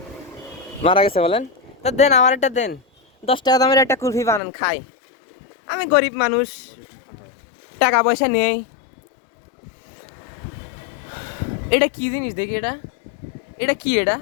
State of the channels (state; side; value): drops out; right; at 4.4 s